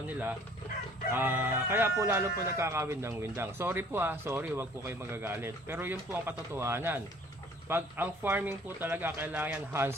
nila. Kaya po lalo po nagkakawin ng windang. Sorry po sorry, wag po kayo magagalit. Pero yun po ang katotohanan. Pag ang farming po talaga kailangan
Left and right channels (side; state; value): both; normal; correlation 0.55